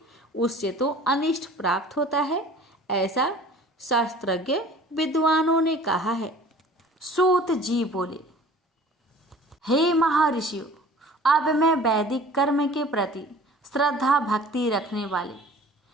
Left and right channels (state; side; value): normal; both; correlation 0.47